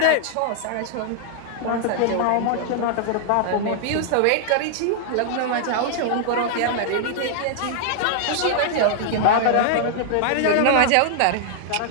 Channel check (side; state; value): both; different; correlation 0.00